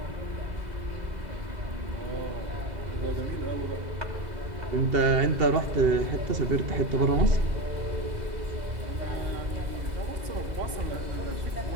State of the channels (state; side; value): late; left; 2.8 ms